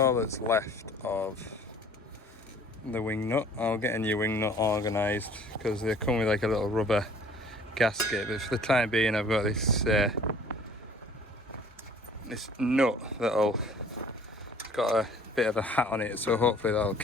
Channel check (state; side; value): normal; both; correlation 0.52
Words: that's left of the wing nut. I'll get a new wing nut organised because they come with like a little rubber gasket, but for the time being I've got this this nut that'll, it's got a bit of a hat on it, so hopefully that'll